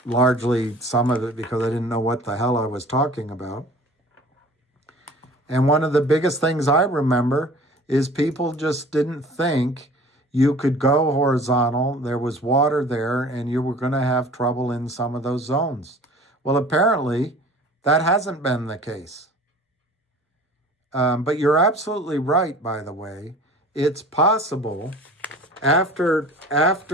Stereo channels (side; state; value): both; normal; correlation 0.45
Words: Largely some of it because I didn't know what the hell I was talking about. And one of the biggest things I remember is people just didn't think you could go horizontal. There was water there and you were going to have trouble in some of those zones. Well, apparently that hasn't been the case. But you're absolutely right, by the way. It's possible after